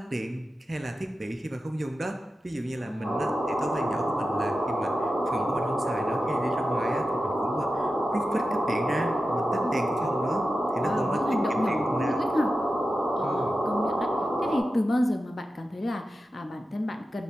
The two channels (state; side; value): normal; both; correlation 0.92